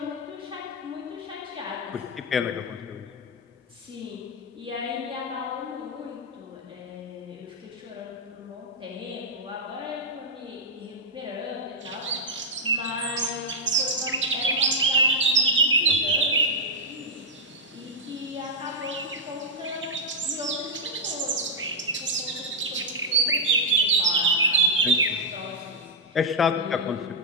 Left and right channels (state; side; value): normal; both; correlation -0.04